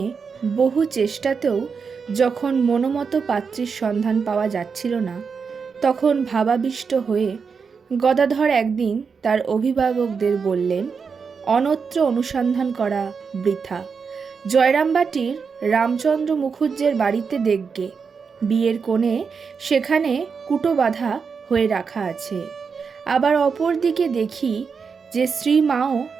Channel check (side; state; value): left; quieter; 5.7 dB